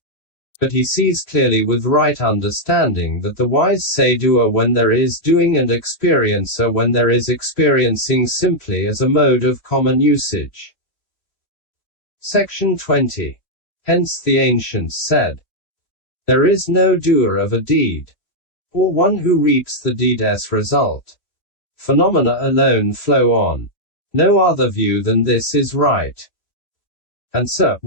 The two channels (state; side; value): late; right; 3.1 ms